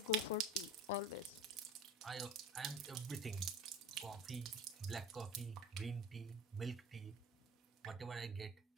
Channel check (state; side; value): normal; both; correlation 0.40